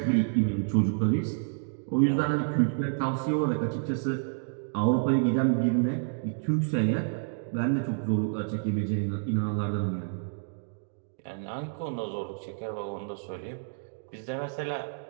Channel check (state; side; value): silent; left; digital silence